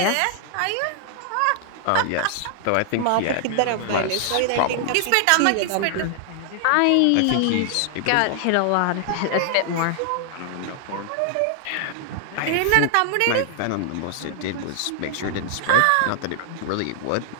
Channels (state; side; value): different; both; correlation 0.00